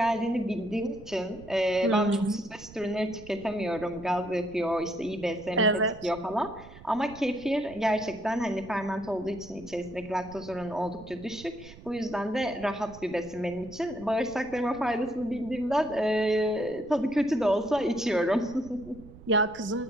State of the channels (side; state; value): right; noise; rumble, 18 dB below the sound